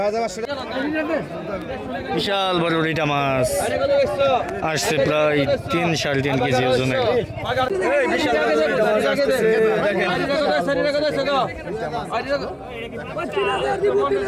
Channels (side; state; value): both; identical; correlation 1.00